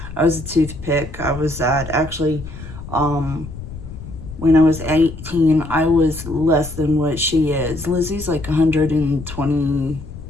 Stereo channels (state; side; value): noise; left; rumble, 12 dB below the sound